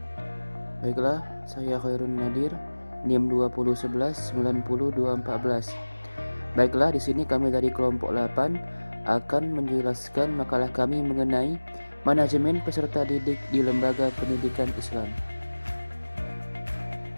Baiklah, saya Khairun Nadir, NIM 201190214. Baiklah, di sini kami dari kelompok 8 akan menjelaskan makalah kami mengenai manajemen peserta didik di lembaga pendidikan Islam.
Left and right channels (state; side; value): inverted; both; correlation -1.00